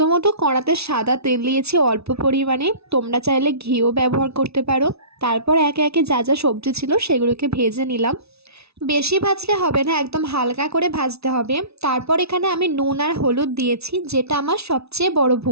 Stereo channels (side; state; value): left; late; 0.79 ms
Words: কড়াতে সাদা তেল দিয়েছি অল্প পরিমাণে, তোমরা চাইলে ঘিও ব্যবহার করতে পারো। তারপর একে একে যা যা সবজি ছিল সেগুলোকে ভেজে নিলাম। বেশি ভাজলে হবে না, একদম হালকা করে ভাজতে হবে। তারপর এখানে আমি নুন আর হলুদ দিয়েছি, যেটা আমার সবচেয়ে বড়